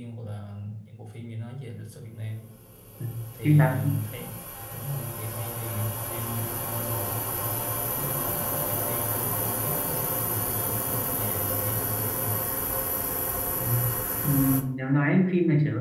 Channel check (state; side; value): identical; both; correlation 1.00